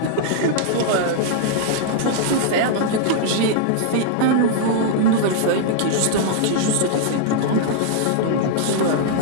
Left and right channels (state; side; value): different; both; correlation -0.01